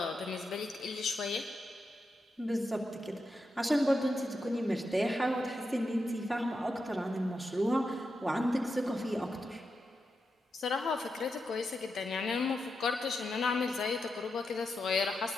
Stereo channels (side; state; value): both; normal; correlation 0.87